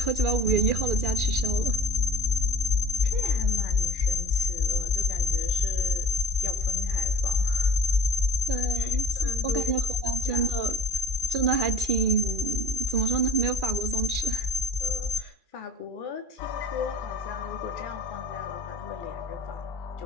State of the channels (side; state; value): left; late; 2.4 ms